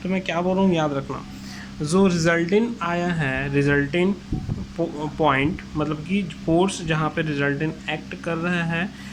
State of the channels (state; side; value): identical; both; correlation 1.00